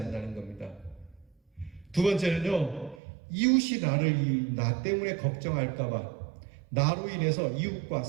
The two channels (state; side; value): drops out; left; at 3.0 s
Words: 겁니다. 두 번째는요, 이웃이 나 때문에 걱정할까봐, 나로 인해서 이웃과